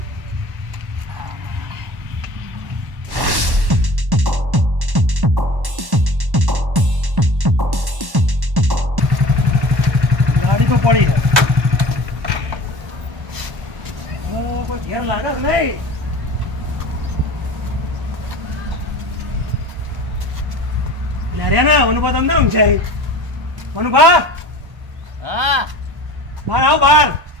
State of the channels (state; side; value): late; left; 1.1 ms